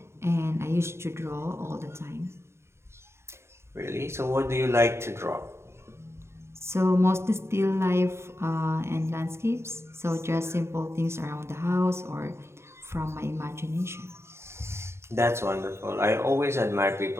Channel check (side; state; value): left; late; 0.13 ms